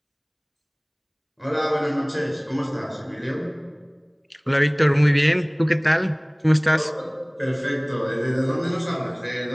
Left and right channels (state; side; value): identical; both; correlation 1.00